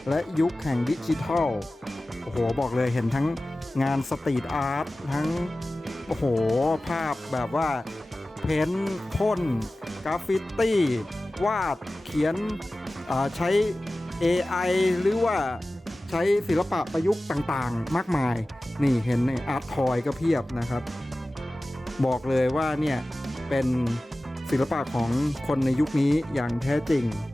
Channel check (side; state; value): both; normal; correlation 0.96